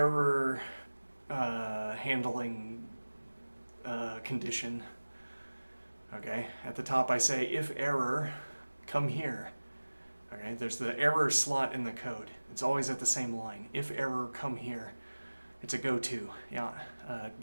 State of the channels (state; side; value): inverted; both; correlation -1.00